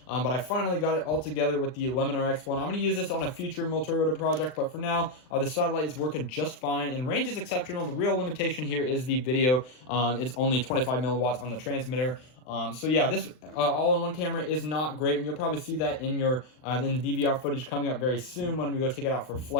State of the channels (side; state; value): right; late; 39 ms